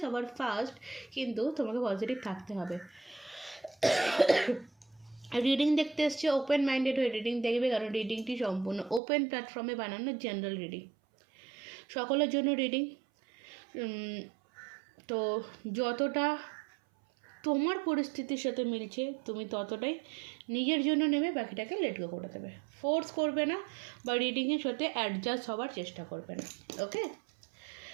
সবার ফার্স্ট কিন্তু তোমাকে পজিটিভ থাকতে হবে। রিডিং দেখতে এসছে, ওপেন মাইন্ডেড হয়ে রিডিং দেখবে, কারণ রিডিংটি সম্পূর্ণ ওপেন প্ল্যাটফর্মে বানানো জেনারেল রিডিং, সকলের জন্য রিডিং। তো যতটা তোমার পরিস্থিতির সাথে মিলছে তুমি ততটাই নিজের জন্য নেবে, বাকিটাকে লেট গো করে দেবে। ফোর্স করবে না বা রিডিংয়ের সাথে অ্যাডজাস্ট হওয়ার চেষ্টা করবে না, ওকে?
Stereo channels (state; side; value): drops out; left; at 9.0 s